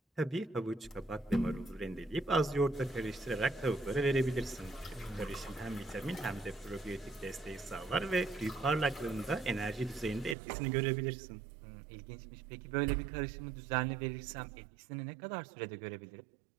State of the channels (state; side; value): drops out; left; at 10.4 s